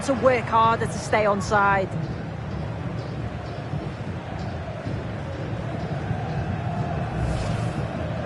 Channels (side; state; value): both; identical; correlation 1.00